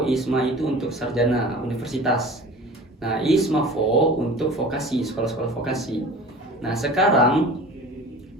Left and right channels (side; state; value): both; normal; correlation 0.40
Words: ISMA itu untuk sarjana universitas. Nah, ISMAFO untuk vokasi, sekolah-sekolah vokasi. Nah, sekarang